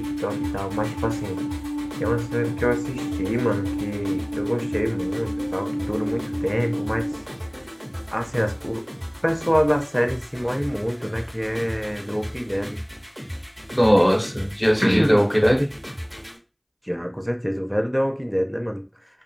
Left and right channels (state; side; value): identical; both; correlation 1.00